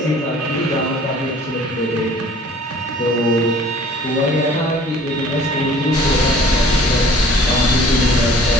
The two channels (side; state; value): both; normal; correlation 0.50